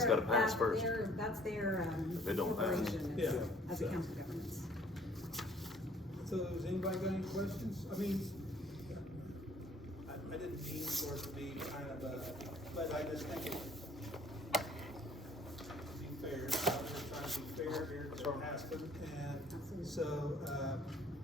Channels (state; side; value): normal; both; correlation 0.57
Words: gotta pass first. That's their, If it don't pass. corporation Yeah. as a council of governments. so has anybody got any questions? I mean, I didn't mean for it to be kind of but I just think it, to be fair, we're trying to be fair here to Aspen, and so,